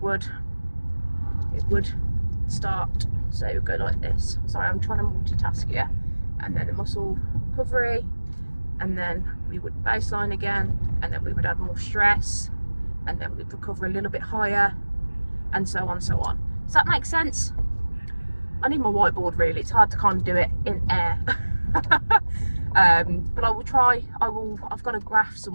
start, so it would go like this. Sorry, I'm trying to multitask here. And then the muscle recovery, and then we would baseline again, and then we would add more stress, and then we'd recover a little bit higher, and so on. Does that make sense? I need my whiteboard really, it's hard to kind of do it in air. But I will try. I've got a graph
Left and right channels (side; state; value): both; inverted; correlation -1.00